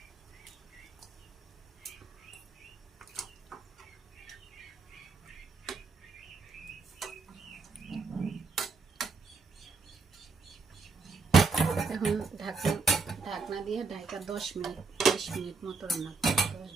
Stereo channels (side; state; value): left; quieter; 4.5 dB